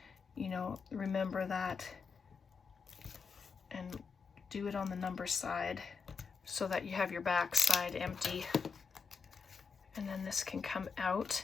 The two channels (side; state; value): right; quieter; 5.5 dB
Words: you know, remember that and do it on the number side so that you have your back side empty. And then this can come out.